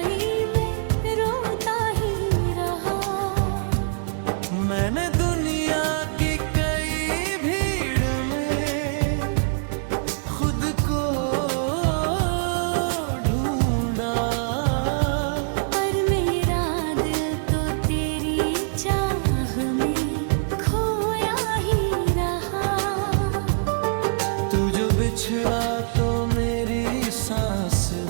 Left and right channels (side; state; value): left; silent; digital silence